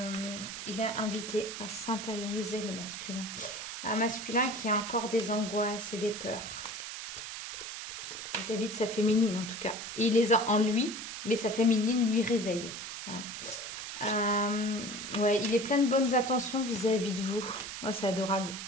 il est invité à s'intérioriser le masculin. Un masculin qui a encore des angoisses et des peurs vis-à-vis de sa féminine en tout cas. Et il les a en lui, mais sa féminine lui réveille. Hein. Ouais, il est plein de bonnes attentions vis-à-vis de vous. Oh, c'est adorable.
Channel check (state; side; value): noise; right; hiss, 8 dB below the sound